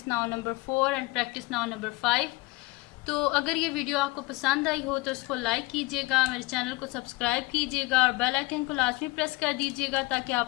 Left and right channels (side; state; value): right; quieter; 23.2 dB